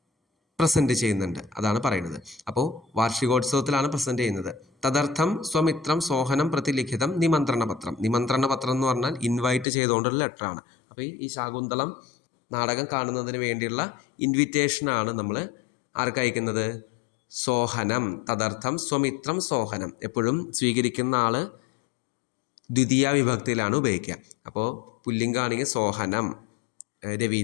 പ്രസൻറ്റ് ചെയ്യുന്നുണ്ട്, അതാണ് പറയുന്നത്. അപ്പോൾ വാർഷികോത്സവത്തിലാണ് പ്രസൻറ്റ് ചെയ്യുന്നത്. തദർത്ഥം സ്വമിത്രം സോഹനം പ്രതിലിഖിതം നിമന്ത്രണപത്രം. നിമന്ത്രണപത്രം എന്ന് പറഞ്ഞാൽ ഇൻവൈറ്റ് ചെയ്തുകൊണ്ടുള്ള ലെറ്ററാണ്. അപ്പോൾ ഈ ശാകുന്തളം നാടകം കാണുന്നതിന് വേണ്ടിയുള്ള ഇൻവിറ്റേഷനാണ് നമ്മൾ ആർക്ക് അയക്കുന്നത്? സോഹനം. തദർത്ഥം സ്വമിത്രം സോഹനം. എപ്പോഴും സ്വീകരിക്കുന്ന ആൾ ദ്വിതീയ വിഭക്തിയിലാണ് ഉപയോഗിക്കുക. അപ്പോൾ പുല്ലിംഗാണെങ്കിൽ സോഹനം,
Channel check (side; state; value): right; drops out; at 9.7 s